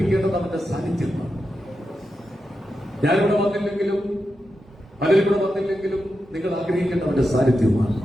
അവന്റെ സാന്നിധ്യമാണ്. ഞാനിവിടെ വന്നില്ലെങ്കിലും പലരും ഇവിടെ വന്നില്ലെങ്കിലും നിങ്ങൾ ആഗ്രഹിക്കേണ്ട അവന്റെ സാന്നിധ്യമാണ്.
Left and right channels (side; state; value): both; normal; correlation 0.88